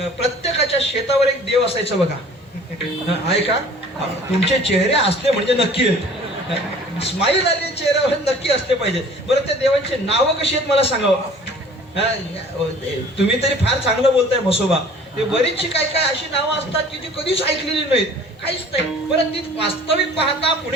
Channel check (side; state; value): both; normal; correlation 0.49